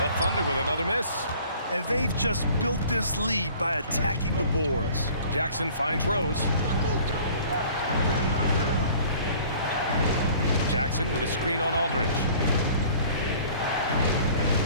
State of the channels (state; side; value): inverted; both; correlation -0.50